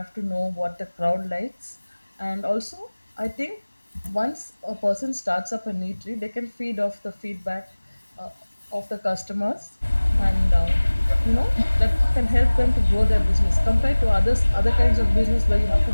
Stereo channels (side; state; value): both; inverted; correlation -1.00